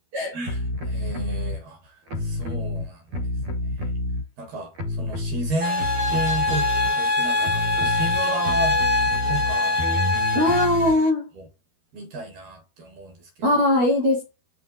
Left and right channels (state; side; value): late; left; 12 ms